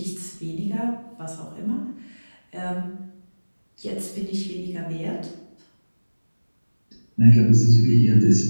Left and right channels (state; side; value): inverted; both; correlation -1.00